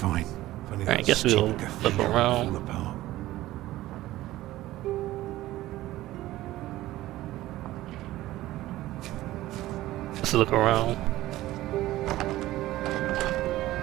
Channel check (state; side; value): quieter; left; 16.1 dB